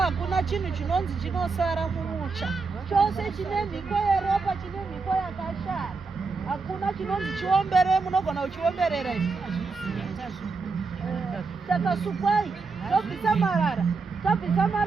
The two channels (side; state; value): left; quieter; 4.4 dB